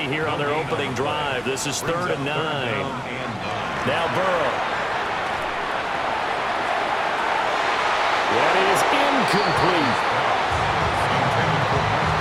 here on their opening drive. This is 3rd and 9. Now Burrow. That is incomplete.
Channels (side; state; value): both; identical; correlation 1.00